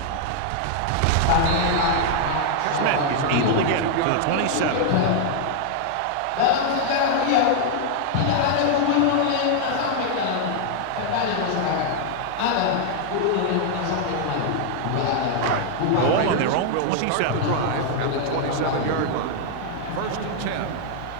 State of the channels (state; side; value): different; both; correlation 0.00